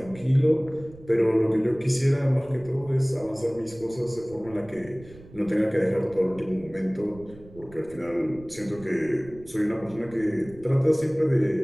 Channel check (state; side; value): noise; right; rumble, 20 dB below the sound